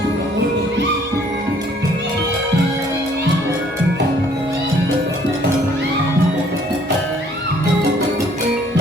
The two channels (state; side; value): normal; both; correlation 0.60